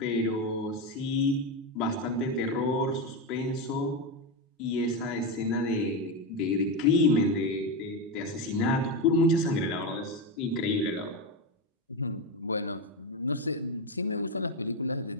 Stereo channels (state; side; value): normal; both; correlation 0.12